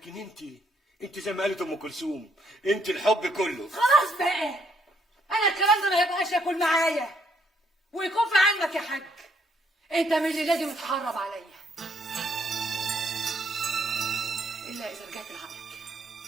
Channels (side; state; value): both; normal; correlation 0.70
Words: انت زي ما قالت ام كلثوم، انت الحب كله. خلاص بقى، انا الكلام ده ما يبقاش ياكل معايا ويكون في علمك يا حاج، انت من اللي لازم تحرب عليا الا اذا رجعت لعقلك